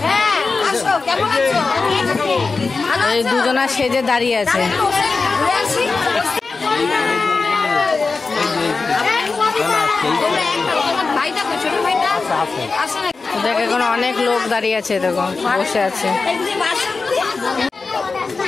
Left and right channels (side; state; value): right; quieter; 4.2 dB